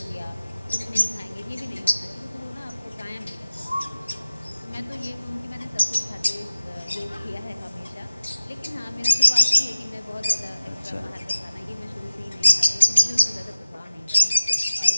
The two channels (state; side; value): inverted; both; correlation -0.97